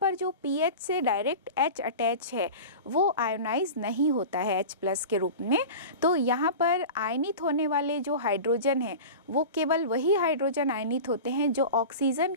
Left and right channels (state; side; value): inverted; both; correlation -0.32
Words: जो PH से डायरेक्ट H अटैच है वो आयोनाइज नहीं होता है H+ के रूप में। तो यहाँ पर आयनित होने वाले जो हाइड्रोजन हैं वो केवल वही हाइड्रोजन आयनित होते हैं जो ऑक्सीजन